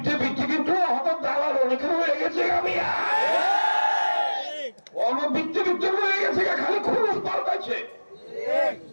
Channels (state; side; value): inverted; both; correlation -1.00